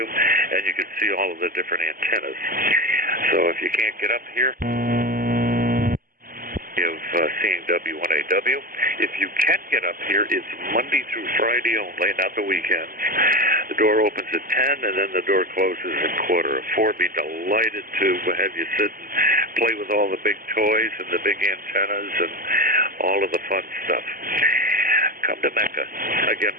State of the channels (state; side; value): late; left; 0.41 ms